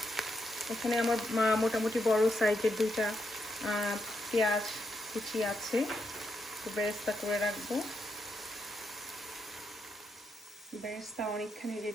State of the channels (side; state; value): both; normal; correlation 0.81